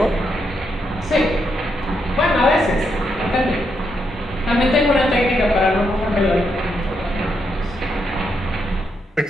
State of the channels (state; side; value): normal; both; correlation 0.80